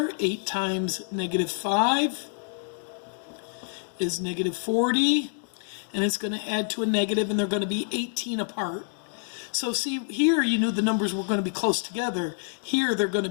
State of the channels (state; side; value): silent; right; digital silence